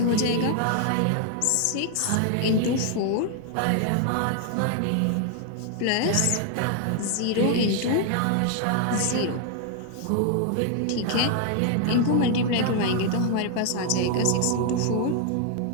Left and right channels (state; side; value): different; both; correlation 0.00